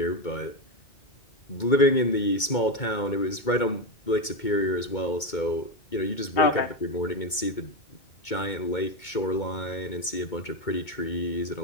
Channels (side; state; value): right; late; 2.2 ms